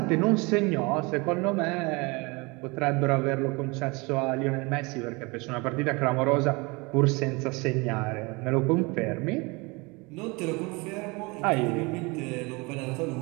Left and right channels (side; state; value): left; quieter; 26.8 dB